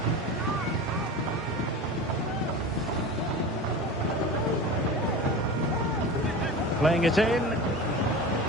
Playing it in.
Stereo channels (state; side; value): normal; both; correlation 0.31